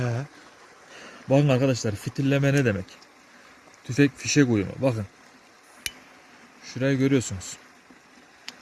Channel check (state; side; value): identical; both; correlation 1.00